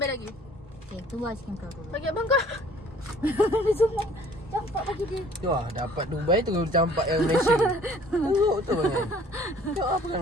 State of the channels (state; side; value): normal; both; correlation 0.54